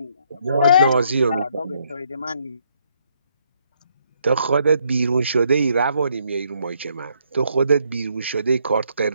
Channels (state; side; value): inverted; both; correlation -0.71